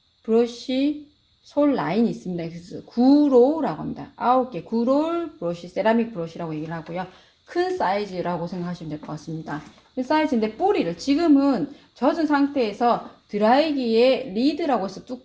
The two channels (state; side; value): identical; both; correlation 1.00